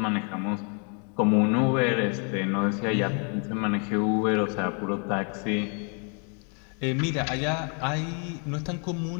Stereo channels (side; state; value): right; quieter; 39.1 dB